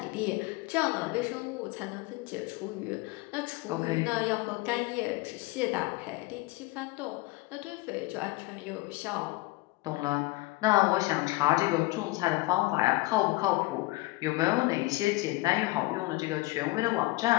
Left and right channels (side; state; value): right; quieter; 21.3 dB